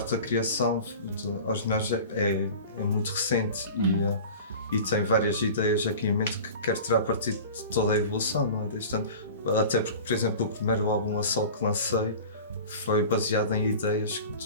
da criação aos ginásio é muito recente e tem várias ideias aqui em mente que quero tirar partido de toda a evolução, não é? Desde tanto, até porque, por exemplo, o primeiro álbum a solo que lancei foi baseado em ideias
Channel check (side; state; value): both; inverted; correlation -0.37